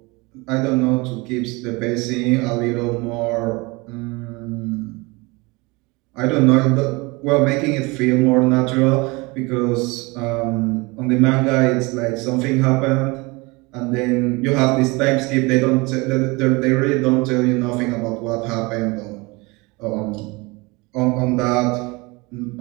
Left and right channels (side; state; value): left; quieter; 25.4 dB